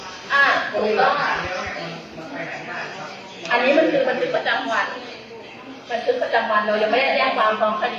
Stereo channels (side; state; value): both; identical; correlation 1.00